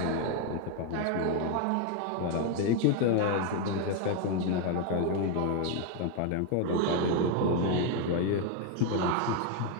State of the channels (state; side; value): different; both; correlation 0.01